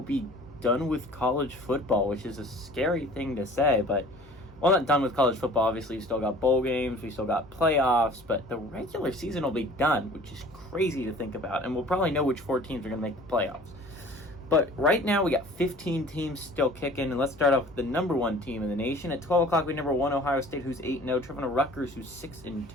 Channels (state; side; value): noise; left; hum, 25 dB below the sound